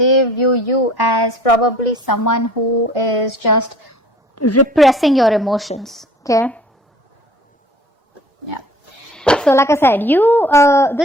view you as probably someone who is just repressing your emotions. Okay. Yeah. So like I said,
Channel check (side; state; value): both; normal; correlation 0.50